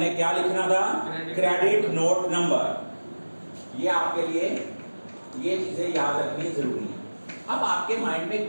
क्या लिखना था? Credit note number. ये आपके लिए ये चीजें याद रखनी जरूरी है। अब आपके माइंड में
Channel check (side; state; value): both; inverted; correlation -1.00